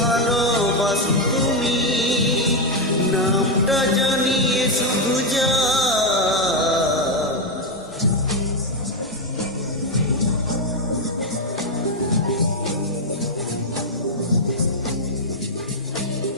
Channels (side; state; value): both; normal; correlation 0.04